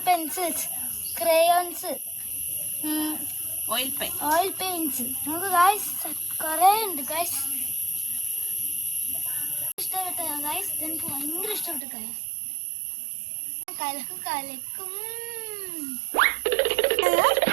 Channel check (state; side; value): drops out; left; at 11.8 s